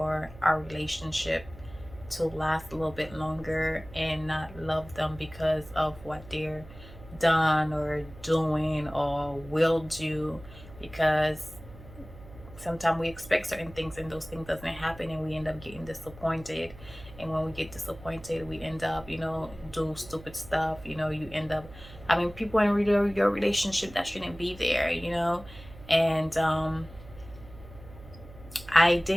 our relationship to last a little bit longer, and not love them because of what they're done or doing or will do. Because sometimes we expect certain things and those things doesn't happen, and we end up getting disappointed. And when we get disappointed, we end up do stupid stuff. You end up people in your relationship that shouldn't be there. And I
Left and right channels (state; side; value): noise; right; hum, 18 dB below the sound